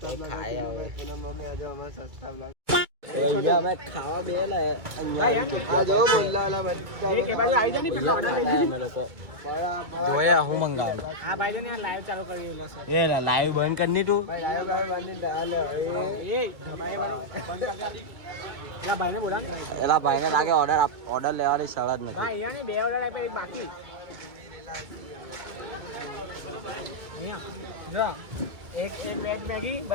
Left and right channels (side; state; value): left; late; 2.3 ms